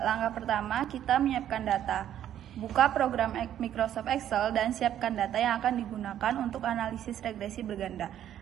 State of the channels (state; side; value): quieter; left; 10.9 dB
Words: Langkah pertama, kita menyiapkan data. Buka program Microsoft Excel dan siapkan data yang akan digunakan untuk analisis regresi berganda.